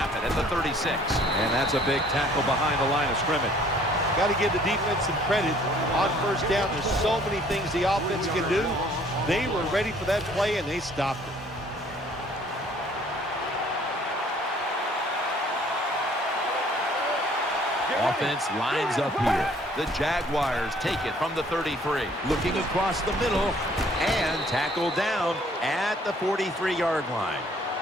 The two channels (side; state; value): both; normal; correlation 0.58